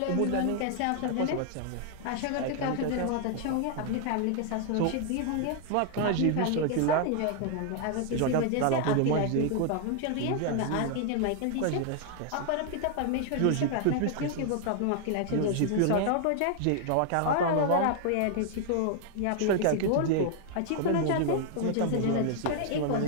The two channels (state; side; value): different; both; correlation 0.00